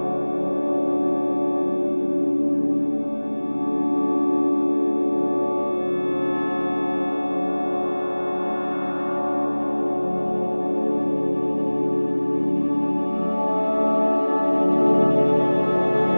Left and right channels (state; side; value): inverted; both; correlation -1.00